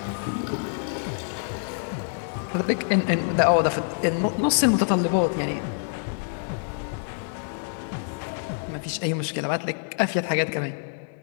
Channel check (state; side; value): silent; right; digital silence